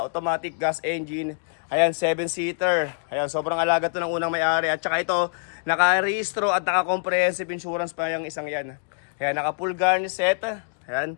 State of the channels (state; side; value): silent; right; digital silence